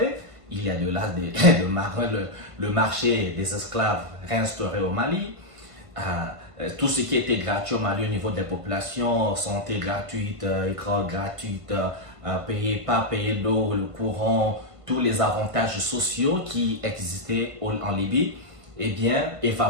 il y a de là le marché des esclaves réinstauré au Mali. Tout ce qui était gratuit au Mali au niveau des populations, santé gratuite, école gratuite, pas payer l'eau, le courant, tous les avantages sociaux qui existaient en Libye, eh bien,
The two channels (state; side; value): late; left; 1.5 ms